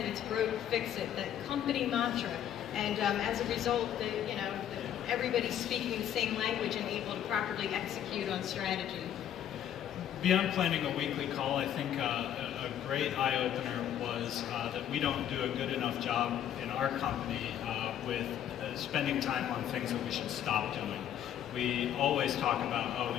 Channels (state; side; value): quieter; right; 10.4 dB